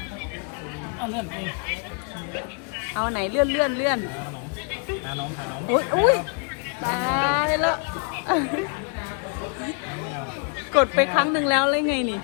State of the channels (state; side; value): quieter; right; 39.0 dB